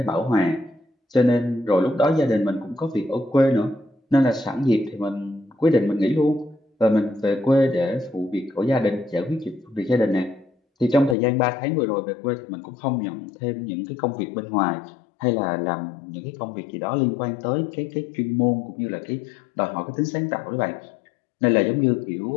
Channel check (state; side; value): drops out; right; at 11.2 s